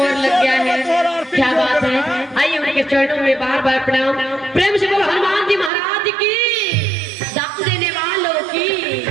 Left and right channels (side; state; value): left; drops out; at 5.7 s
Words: लग गया है, क्या बात है। आइए उनके चरणों में बार बार प्रणाम। प्रेम से बोलो हनुमान जी महाराज की, दान देने वालों की।